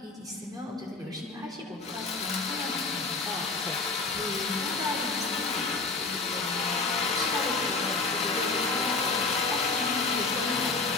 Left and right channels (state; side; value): quieter; right; 3.8 dB